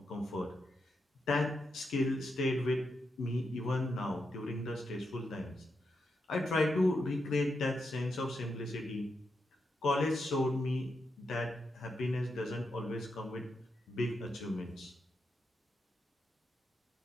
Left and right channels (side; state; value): both; normal; correlation 0.84